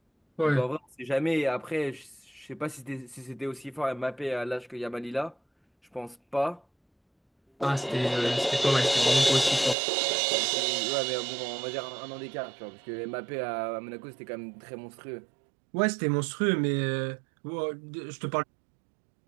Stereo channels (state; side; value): drops out; left; at 9.8 s